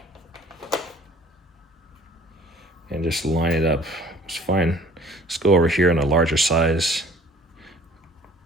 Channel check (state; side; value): normal; both; correlation 0.53